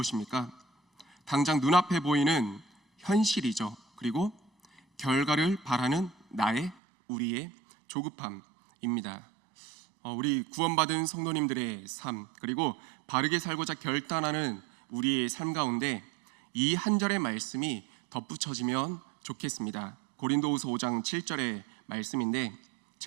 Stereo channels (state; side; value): drops out; left; at 6.8 s